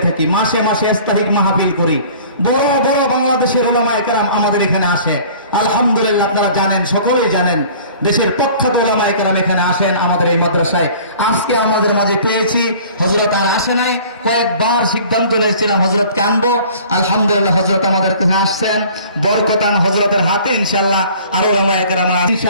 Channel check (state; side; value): inverted; both; correlation -0.49